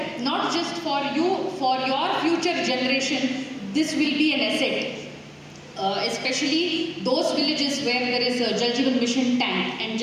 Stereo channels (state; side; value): identical; both; correlation 1.00